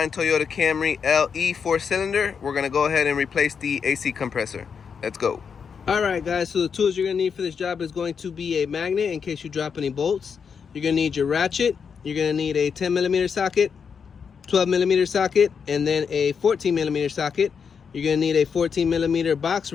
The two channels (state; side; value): quieter; right; 6.4 dB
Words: Toyota Camry LE 4-cylinder. We're gonna go ahead and replace the AC compressor. Let's go. All right, guys, so the tools you're gonna need for this job is going to be a magnet in case you drop any bolts. You're gonna need your ratchet. You're gonna need a 10mm socket, 12mm socket, and then a 14mm socket. You're gonna need a 14mm box